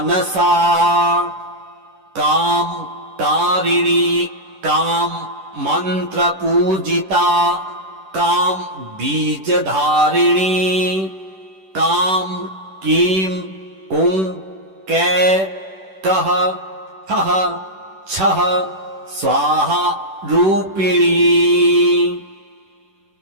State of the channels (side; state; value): left; late; 10 ms